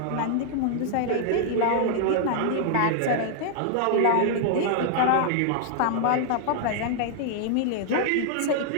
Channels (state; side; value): different; both; correlation -0.01